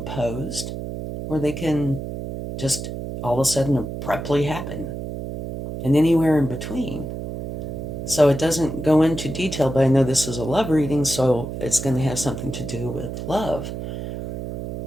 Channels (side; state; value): right; noise; hum, 6 dB below the sound